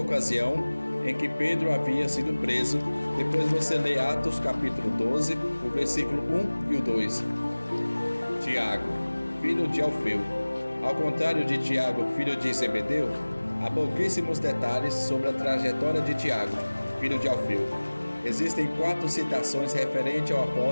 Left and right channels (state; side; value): inverted; both; correlation -1.00